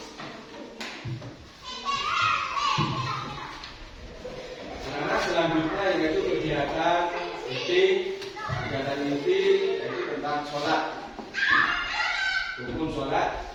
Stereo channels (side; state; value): both; identical; correlation 1.00